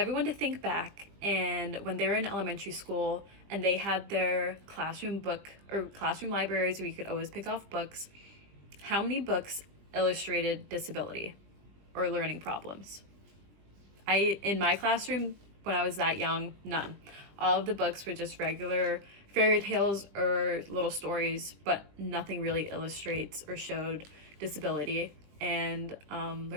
to think back and when they were in elementary school and they had their classroom book or classroom libraries where you could always pick off books, how many books illustrated disability or learning problems? In my classroom, when I was that young, none. All of the books were just regular fairy tales or little stories, but nothing really illustrates or showed disability and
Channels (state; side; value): late; left; 20 ms